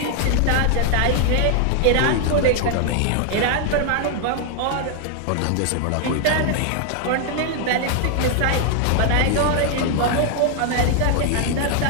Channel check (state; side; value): different; both; correlation 0.00